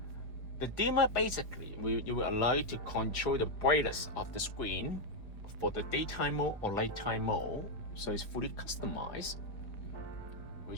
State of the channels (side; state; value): right; late; 4.9 ms